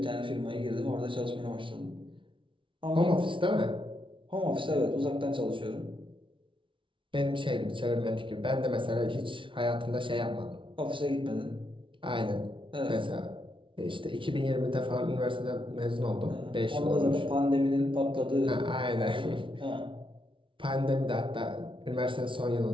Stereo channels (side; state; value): left; late; 0.25 ms